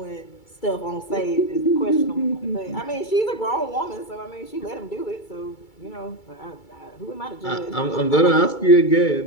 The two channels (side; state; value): right; late; 2.3 ms